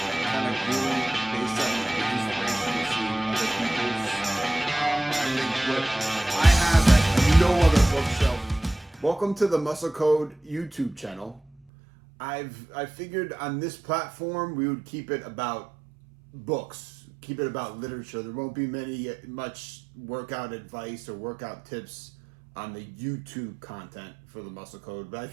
kind of grew based on the inspiration of seeing other people's. I think what I have at no other bookshelf. Welcome to the Muscle Code YouTube channel. I figured on this platform we would keep it about books, keep it about literature. There won't be much workout advice or workout tips on the YouTube content for the Muscle Code, but I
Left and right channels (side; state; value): left; drops out; at 11.6 s